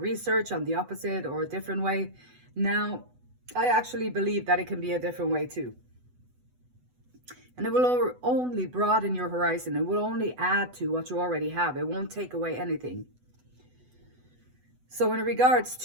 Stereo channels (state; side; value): late; left; 8.0 ms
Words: on the opposite or a different way, now I actually believe that it can be a different way too. And it will only broaden your horizon. It will only add to what you already have. It won't take away anything. So in regards